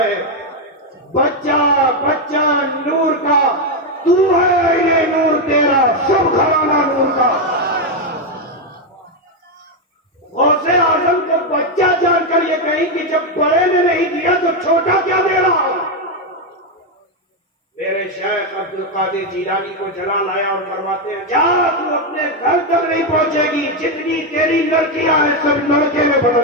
बच्चा बच्चा नूर का, तू है ये नूर, तेरा सब घराना नूर का। गौसे आजम को बच्चा जानकर ये कही कि जब बड़े ने नहीं दिया तो छोटा क्या दे रहा। मेरे शेख अब्दुल कादिर जिलानी को जला लाया और फरमाते हैं, जा तू अपने घर तक नहीं पहुंचेगी, जितनी तेरी लड़कियां हैं सब लड़के में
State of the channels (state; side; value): normal; both; correlation 0.05